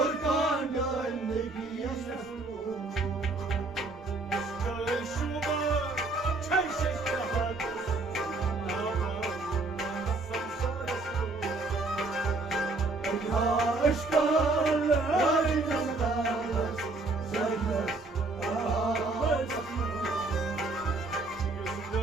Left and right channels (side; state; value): left; quieter; 3.2 dB